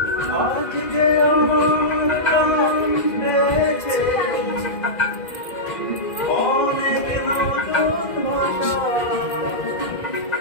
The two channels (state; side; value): late; right; 2.0 ms